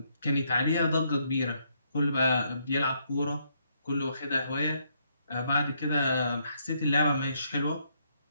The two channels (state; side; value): inverted; both; correlation -0.73